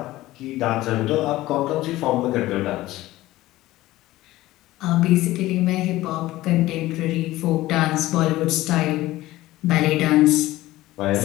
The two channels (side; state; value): right; quieter; 16.9 dB